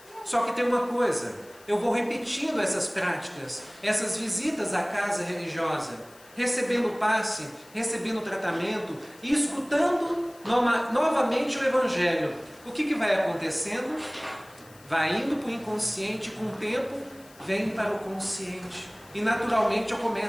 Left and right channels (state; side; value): noise; left; hiss, 25 dB below the sound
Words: Só que tem uma coisa, eu vou repetindo essas práticas, essas visitas à casa religiosa, recebendo passe, recebendo tratamento e escutando novamente o Evangelho. O que vai acontecendo? Vai indo para o inconsciente, com o tempo vem para o consciente. E naturalmente eu